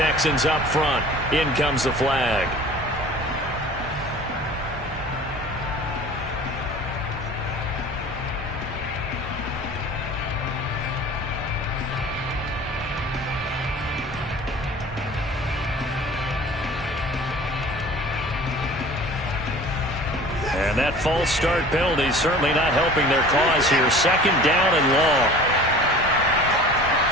up front. In comes the flag. And that false start penalty certainly not helping their cause here. 2nd down and long.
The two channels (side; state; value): both; normal; correlation 0.44